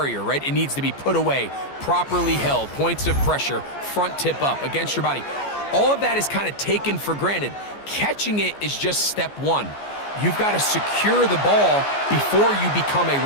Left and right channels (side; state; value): right; late; 14 ms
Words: right? It needs to be put away, properly held, points of pressure, front tip up against your body. All of that is kind of taken for granted. Catching it is just step one. You've got to secure the ball before you become a